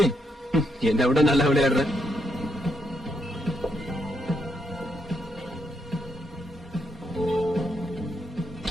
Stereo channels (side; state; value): both; normal; correlation 0.79